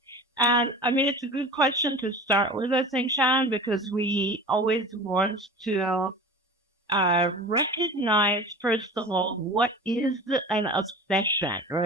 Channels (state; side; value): normal; both; correlation 0.36